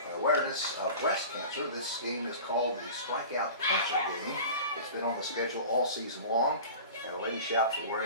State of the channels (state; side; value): inverted; both; correlation -0.37